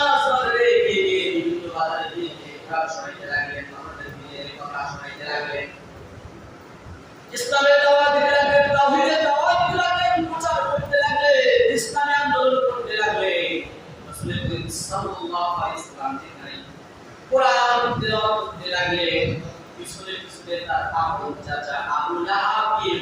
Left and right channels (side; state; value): both; identical; correlation 1.00